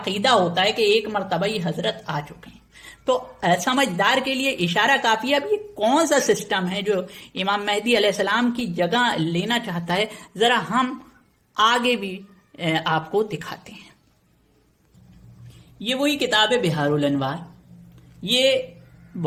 ہوتا ہے کہ ایک مرتبہ ہی حضرت آ چکے ہیں۔ تو سمجھدار کے لیے اشارہ کافی ہے۔ اب یہ کون سا سسٹم ہے جو امام مہدی علیہ السلام کی جگہ لینا چاہتا ہے؟ ذرا ہم آگے بھی آپ کو دکھاتے ہیں۔ یہ وہی کتاب ہے بحار الانوار۔ یہ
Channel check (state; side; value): identical; both; correlation 1.00